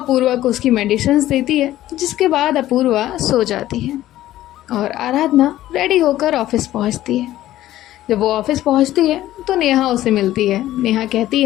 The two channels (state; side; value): quieter; right; 14.2 dB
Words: को उसकी मेडिसिन्स देती है, जिसके बाद अपूर्वा सो जाती है और आराधना रेडी होकर ऑफिस पहुंचती है। जब वो ऑफिस पहुंचती है तो नेहा उसे मिलती है। नेहा कहती